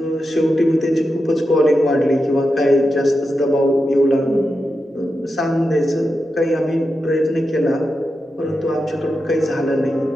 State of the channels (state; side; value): normal; both; correlation 0.89